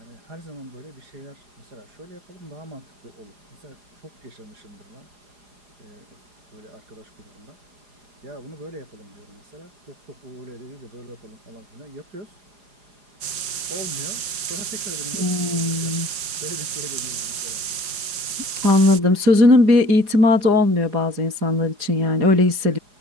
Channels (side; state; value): left; late; 4.9 ms